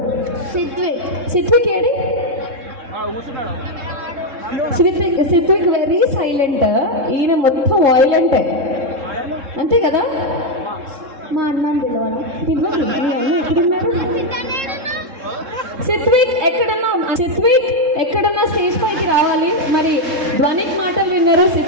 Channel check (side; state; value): left; late; 3.7 ms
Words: సిత్విక్ ఏడి? సిత్విక్ వెరీ సైలెంట్, ఈయన మొత్తం వాయిలెంటే, అంతే కదా? మా అన్న పిలవాలి. ఎక్కడున్నారు సిత్విక్? ఎక్కడన్నా స్టేజ్ పైకి రావాలి. మరి ధ్వనిక్ మాటలు విన్నారు,